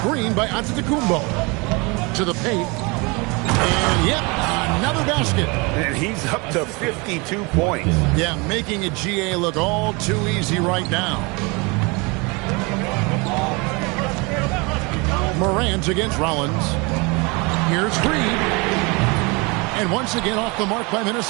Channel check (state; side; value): quieter; left; 28.1 dB